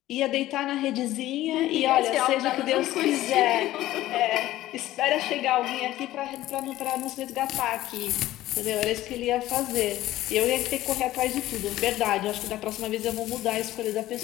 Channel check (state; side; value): quieter; right; 15.2 dB